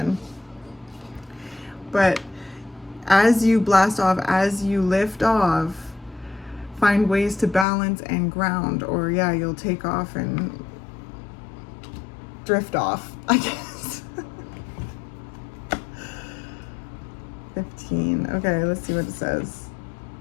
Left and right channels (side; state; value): right; drops out; at 7.7 s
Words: But as you blast off, as you lift off, find ways to balance and ground, or yeah, you'll take off and drift off, I guess. 15. Okay, let's see what it says.